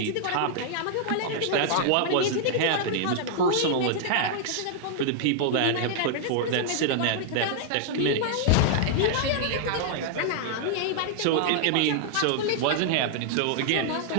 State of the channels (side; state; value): both; different; correlation -0.01